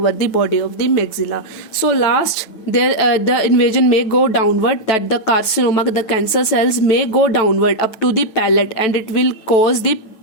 the body of the maxilla. So last, there the invasion may go downward, that the carcinoma, the cancer cells may go downward up to the palate, and it will cause the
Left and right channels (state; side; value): late; right; 9.3 ms